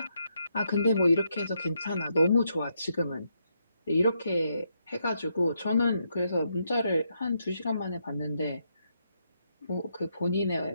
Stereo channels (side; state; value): both; inverted; correlation -0.79